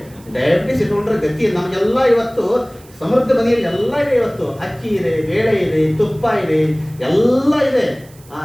ಡಯಾಬಿಟಿಸ್ ಇಟ್ಕೊಂಡ್ರೆ ಗತಿ. ನಮಗೆಲ್ಲ ಇವತ್ತು ಸಮೃದ್ಧ ಮನೆಯಲ್ಲಿ ಎಲ್ಲ ಇದೆ. ಇವತ್ತು ಅಕ್ಕಿ ಇದೆ, ಬೇಳೆ ಇದೆ, ತುಪ್ಪ ಇದೆ, ಎಲ್ಲ ಇದೆ.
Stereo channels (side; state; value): right; noise; hiss, 26 dB below the sound